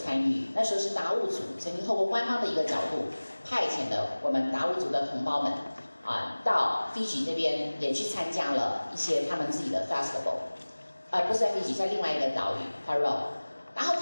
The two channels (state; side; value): inverted; both; correlation -1.00